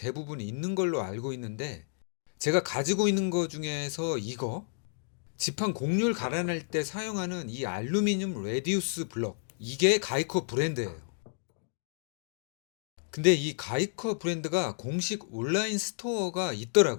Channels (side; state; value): right; silent; digital silence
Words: 있는 걸로 알고 있는데, 제가 가지고 있는 거 중에서 이거 지판 곡률 갈아낼 때 사용하는 이 알루미늄 레디우스 블럭, 이게 가이커 브랜드예요. 근데 이 가이커 브랜드가 공식 온라인 스토어가